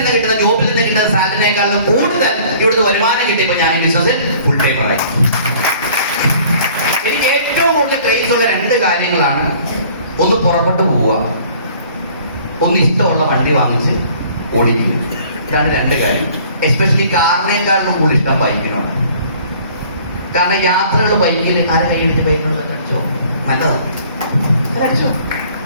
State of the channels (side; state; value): both; inverted; correlation -0.53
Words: കിട്ടുന്ന, ജോബിൽ നിന്ന് കിട്ടുന്ന സാലറിനേക്കാളും കൂടുതൽ ഇവിടുന്ന് വരുമാനം കിട്ടിയപ്പോ ഞാൻ ഈ ബിസിനസ്സിൽ ഫുൾ ടൈമറായി. കൂടുതൽ ക്രേസ് ഉള്ള രണ്ട് കാര്യങ്ങളാണ്. ഒന്ന് പുറപ്പെട്ടു പോവുക, ഒന്ന് ഇഷ്ടമുള്ള വണ്ടി വാങ്ങിച്ച് ഓടിക്കുക. ഇതാണ് രണ്ട് കാര്യം. എസ്പെഷ്യലി കാറിനേക്കാളും കൂടുതൽ ഇഷ്ടം ബൈക്കിനോട്. കാരണം യാത്രകൾ ബൈക്കിൽ ആരെ കൈയടിച്ച് ബൈക്കിനോട് അടിച്ചോ, നല്ലതാണ്, അടിച്ചോ.